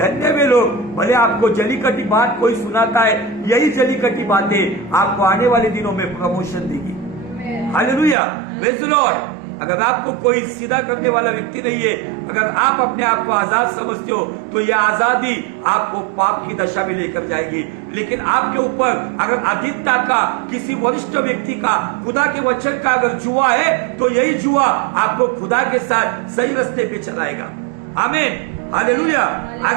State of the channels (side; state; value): left; drops out; at 8.2 s